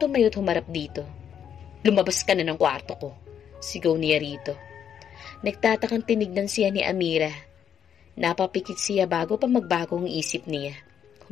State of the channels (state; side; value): quieter; right; 8.6 dB